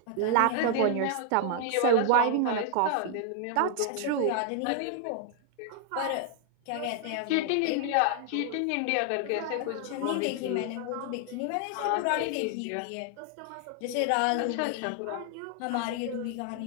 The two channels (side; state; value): both; different; correlation 0.00